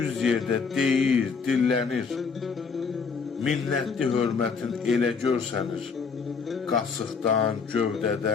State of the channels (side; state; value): right; quieter; 5.4 dB